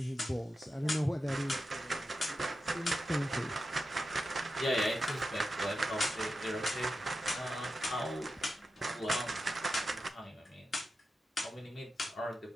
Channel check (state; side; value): normal; both; correlation 0.90